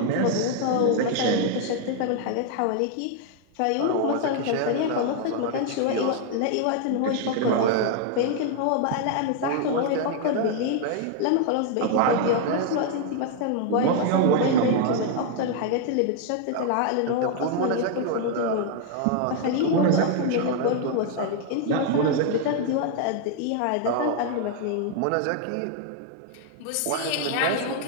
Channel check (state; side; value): different; both; correlation 0.00